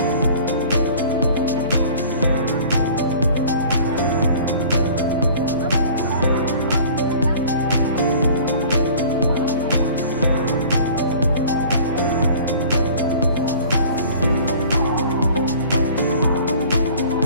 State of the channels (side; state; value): both; inverted; correlation -0.46